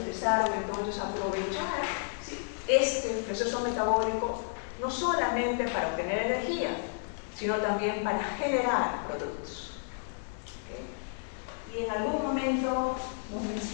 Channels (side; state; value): right; silent; digital silence